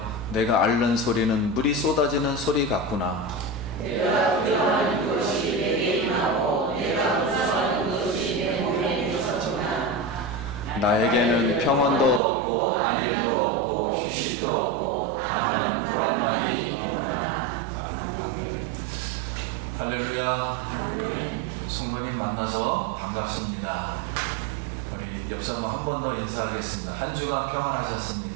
내가 앓는 소리는 물이 쏟아지는 소리 같구나. 나에게는 평안도 없고 안일도 없고 휴식도 없고 다만 불안만이 있구나. 아멘. 할렐루야. 성도님 만나서 반갑습니다. 우리 옆 사람 한 번 더 인사하겠습니다. 한 주간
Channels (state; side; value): drops out; left; at 12.2 s